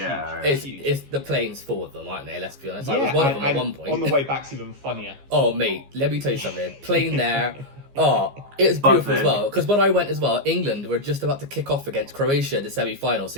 the planes full of them, aren't they? Let's be honest. I was one of them at one point. On the way back's even funnier. Oh mate, let me tell you something. Plane there. Oh, it was beautiful as well. Because when I went as well, England were just about to kick off against Croatia in the semi-final. So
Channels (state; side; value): late; left; 15 ms